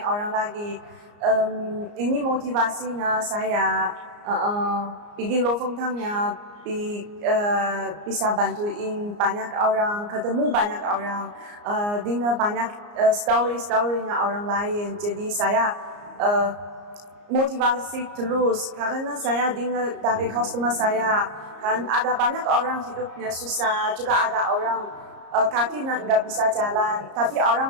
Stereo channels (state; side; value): late; left; 34 ms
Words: orang lagi. Ini motivasinya saya bikin Lofotennya bisa bantuin banyak orang, ketemu banyak orang, dengar banyak story-storynya orang lain. Jadi saya motivasi terus karena saya dengar dari customer saya kan ada banyak orang hidupnya susah, juga ada orang kaki nggak bisa jalan, tapi